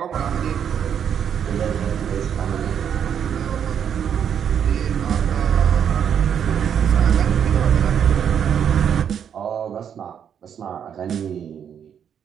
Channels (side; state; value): left; quieter; 8.4 dB